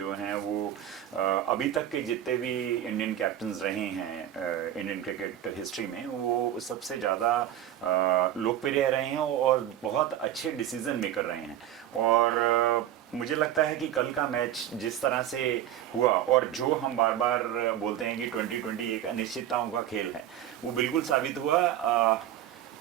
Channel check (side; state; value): left; quieter; 11.4 dB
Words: हैं वो अभी तक के जितने भी इंडियन कैप्टन्स रहे हैं इंडियन क्रिकेट हिस्ट्री में, वो सबसे ज़्यादा लोकप्रिय रहे हैं और बहुत अच्छे डिसीजन मेकर रहे हैं। और मुझे लगता है कि कल का मैच जिस तरह से हुआ और जो हम बार बार बोलते हैं कि 2020 एक अनिश्चितताओं का खेल है, वो बिल्कुल साबित हुआ।